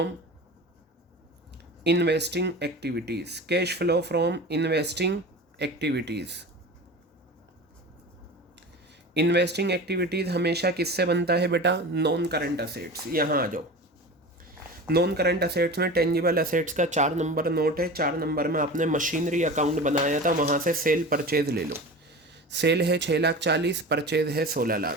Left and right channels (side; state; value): both; normal; correlation 0.33